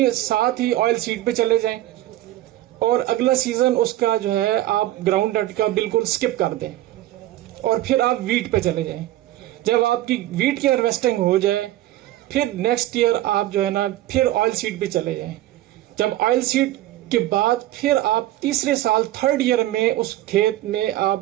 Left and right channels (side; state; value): left; quieter; 14.8 dB